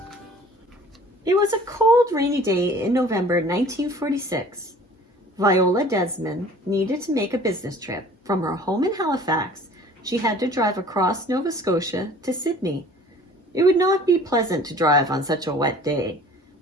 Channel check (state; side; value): normal; both; correlation 0.48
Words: It was a cold, rainy day in November 1946. Viola Desmond needed to make a business trip. From her home in Halifax, she had to drive across Nova Scotia to Sydney. It would not be pleasant to drive on such a wet day,